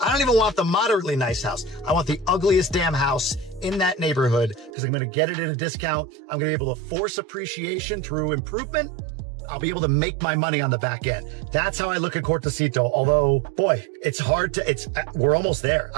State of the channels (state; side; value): drops out; left; at 4.7 s